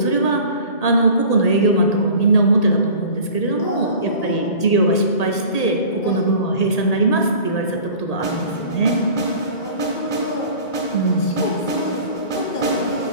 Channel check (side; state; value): right; late; 1.8 ms